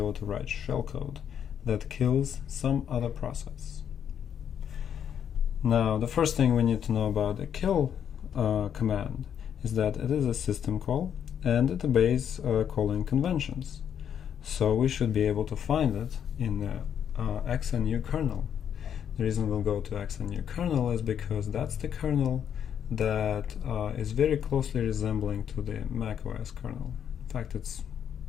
to write shellcode that kills some other process. Now, the first thing we need to know about the kill command is that it is a system call and it obeys calling conventions. So we should be able to find it in the XNU kernel. The reason we'll go to XNU kernel is because that's the kernel that is very closely resembling to the macOS kernel. In fact, it's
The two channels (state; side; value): quieter; right; 8.7 dB